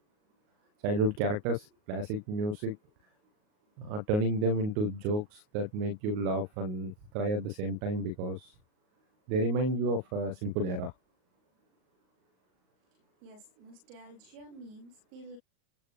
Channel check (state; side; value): late; left; 38 ms